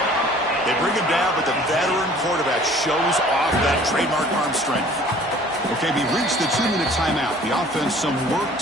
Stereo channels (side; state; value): both; normal; correlation 0.51